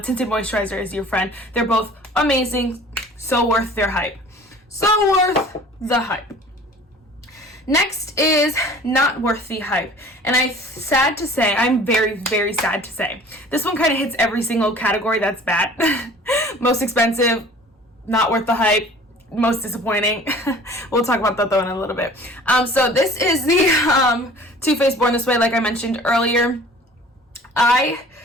tinted moisturizer is your friend. They're both amazing, so worth their hype. So worth the hype. Next is not worth the hype. And I'm very, very sad to say, this one kind of hits every single category that's bad. Most expensive, not worth the hype, most disappointing. We'll talk about that though in a little bit. So this is the Too Faced Born This Way, like I mentioned earlier.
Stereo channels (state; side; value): normal; both; correlation 0.47